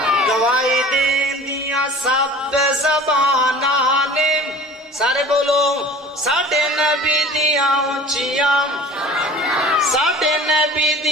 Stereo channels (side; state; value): both; normal; correlation 0.44